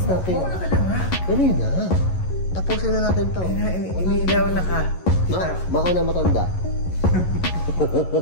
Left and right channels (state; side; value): late; right; 11 ms